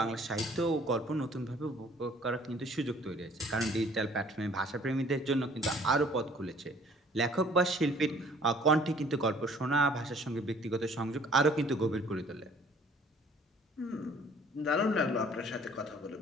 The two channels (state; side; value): normal; both; correlation 0.55